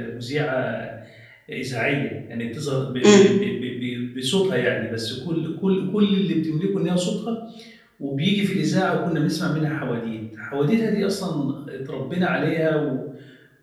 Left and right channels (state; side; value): identical; both; correlation 1.00